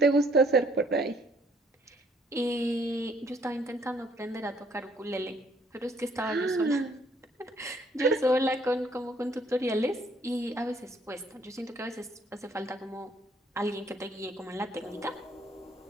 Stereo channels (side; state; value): both; normal; correlation 0.64